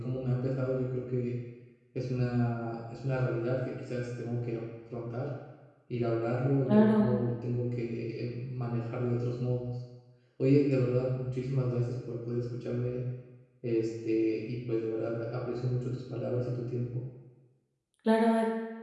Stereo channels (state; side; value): identical; both; correlation 1.00